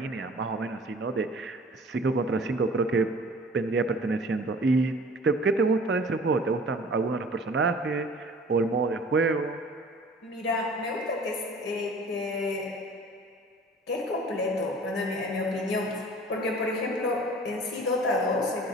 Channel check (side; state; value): both; normal; correlation 0.46